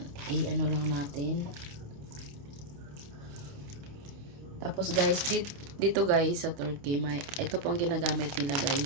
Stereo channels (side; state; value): left; late; 28 ms